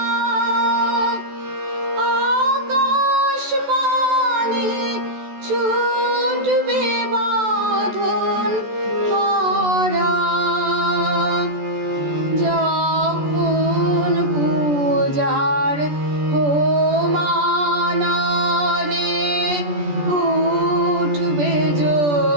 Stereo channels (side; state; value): left; late; 14 ms